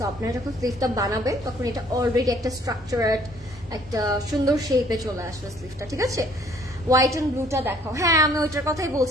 আপনারা যখন স্লিভটা বানাবেন তখন এটা অলরেডি একটা স্ট্রাকচারার্ড একটা সুন্দর শেপে চলে আসবে স্লিভটা, ঠিক আছে। হোয়াইট এন্ড ব্লুটা দেখাও। হ্যাঁ আমি ওইটার কথাই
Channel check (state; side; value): normal; both; correlation 0.59